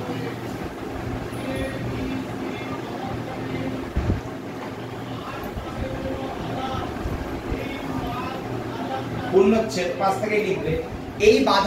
পূর্ণচ্ছেদ 5 থেকে লিখবে। এই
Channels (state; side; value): identical; both; correlation 1.00